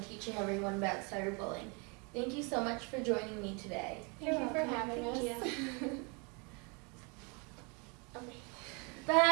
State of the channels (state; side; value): quieter; left; 32.6 dB